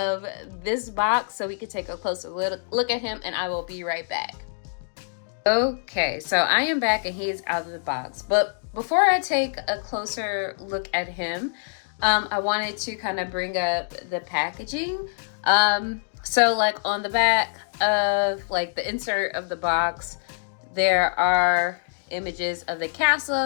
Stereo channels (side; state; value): right; silent; digital silence